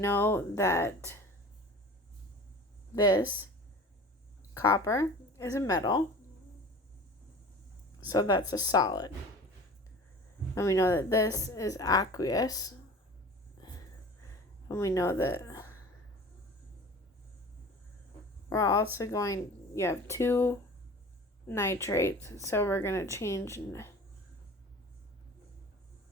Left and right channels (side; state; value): both; normal; correlation 0.40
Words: that this copper is a metal, so that's a solid. And we know that this is aqueous. And we know that we're also you have two nitrates, so we're going to change.